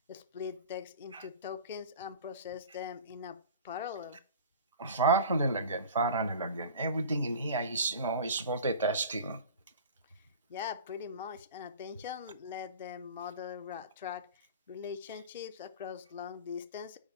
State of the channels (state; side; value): inverted; both; correlation -0.38